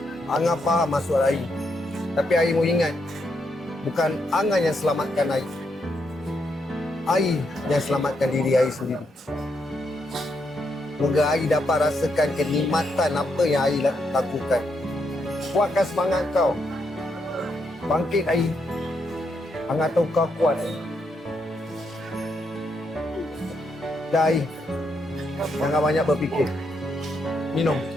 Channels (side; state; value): both; normal; correlation 0.79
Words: Angah faham maksud Ai. Tapi Ai mau ingat, bukan Angah yang selamatkan Ai. Ai yang selamatkan diri Ai sendiri. Semoga Ai dapat rasakan kenikmatan apa yang Ai lakukan. Kuatkan semangat kau. Bangkit Ai. Angah tahu kau kuat Ai. Dah Ai. Jangan banyak berfikir. Minum.